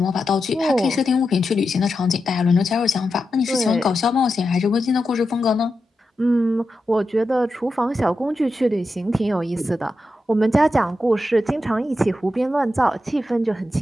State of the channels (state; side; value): normal; both; correlation 0.89